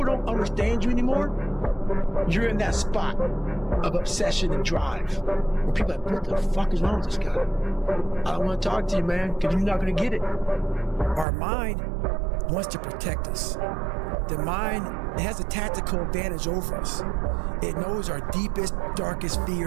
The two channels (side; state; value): left; drops out; at 11.2 s